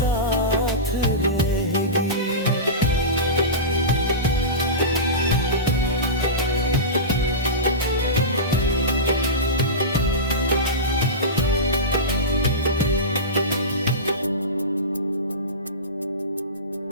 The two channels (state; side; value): normal; both; correlation -0.20